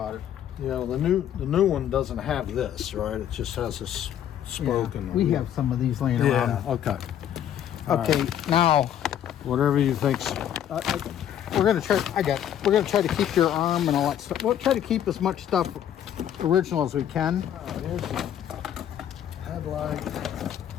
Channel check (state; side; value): quieter; right; 10.3 dB